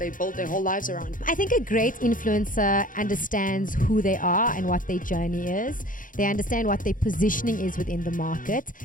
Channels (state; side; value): late; right; 0.39 ms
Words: build their whole lives around. I think a great influencer understands who they are and what their journey is. They understand what their positioning is within the market.